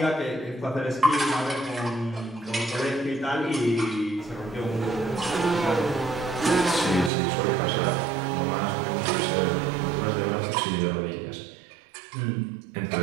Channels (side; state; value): left; drops out; at 7.1 s